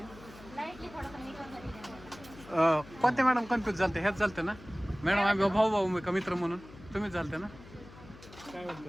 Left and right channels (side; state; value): left; noise; hum, 19 dB below the sound